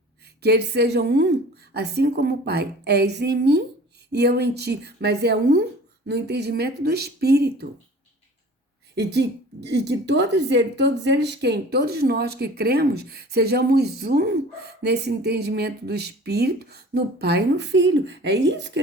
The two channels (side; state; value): both; normal; correlation 0.44